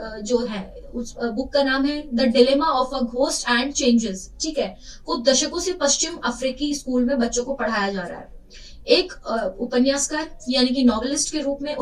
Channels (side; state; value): both; identical; correlation 1.00